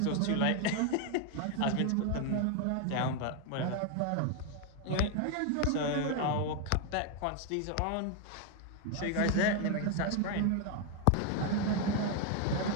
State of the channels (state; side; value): different; both; correlation 0.01